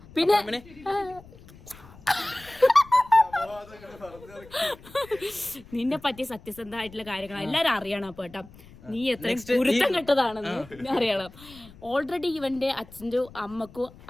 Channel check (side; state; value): left; noise; rumble, 21 dB below the sound